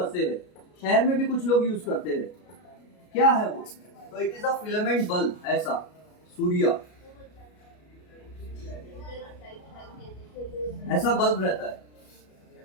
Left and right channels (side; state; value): right; late; 33 ms